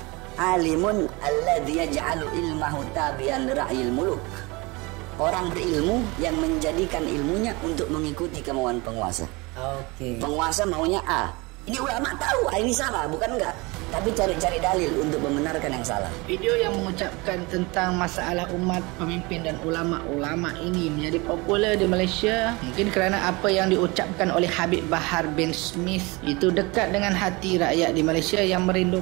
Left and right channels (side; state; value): left; quieter; 25.3 dB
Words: Alimun alladzi yaj'alu ilmahu tabi'an ra'yil muluk. Orang berilmu yang menjadikan ilmunya untuk mengikuti kemauan penguasa. Penguasa maunya A. Ini ulama tahu ini salah, bukan enggak. Tapi cari-cari dalil untuk membenarkan yang salah. Video yang mengucapkan tentang masalah umat, pemimpin dan ulama-ulama ini menjadi popular di Malaysia mungkin kerana apa yang diucapkan oleh Habib Bahar bin Smith itu dekat dengan hati rakyat di Malaysia yang